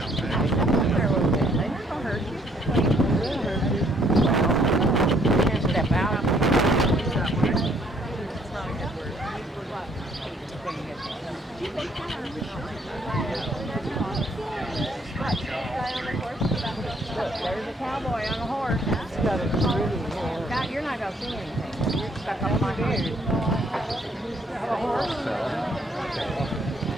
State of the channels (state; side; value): normal; both; correlation 0.66